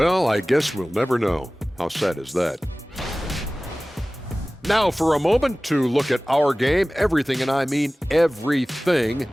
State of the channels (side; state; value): both; normal; correlation 0.98